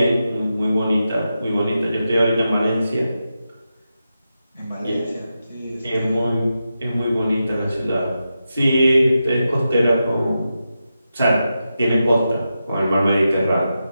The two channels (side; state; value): both; inverted; correlation -0.89